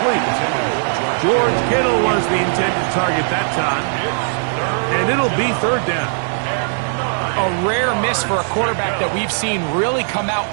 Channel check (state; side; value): silent; left; digital silence